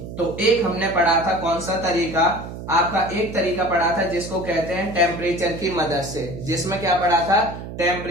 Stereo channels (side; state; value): right; noise; hum, 10 dB below the sound